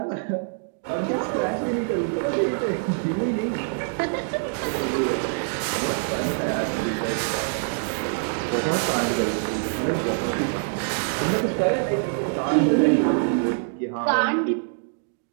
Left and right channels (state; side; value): silent; left; digital silence